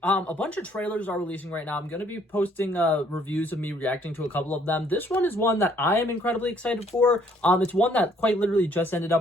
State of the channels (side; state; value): both; normal; correlation 0.63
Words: a bunch of trailers are releasing right now. I'm going to be posting reviews of me reacting to a couple of them. This one is one that I am incredibly excited for. It's one that quite literally just ended